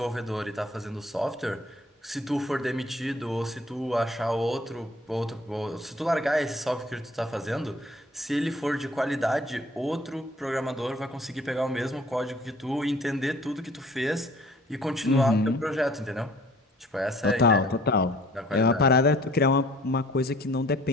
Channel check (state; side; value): normal; both; correlation 0.54